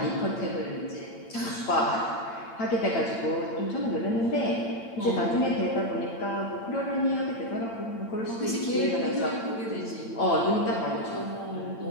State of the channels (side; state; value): right; late; 8.8 ms